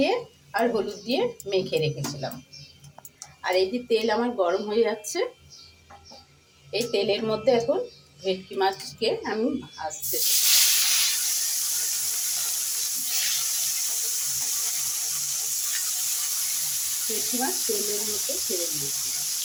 আর হলুদ দিয়ে মেখে রেখেছিলাম। আর এই যে তেল আমার গরম হয়ে যাচ্ছে, এই তেলের মধ্যে এখন ভেটকি মাছকে আমি ভাজতে দেব। ভেটকি মাছ তেলের মধ্যে ছেড়ে দিয়েছি।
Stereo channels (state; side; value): identical; both; correlation 1.00